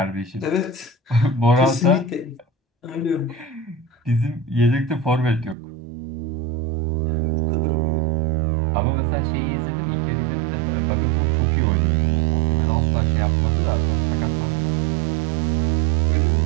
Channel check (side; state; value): left; drops out; at 5.6 s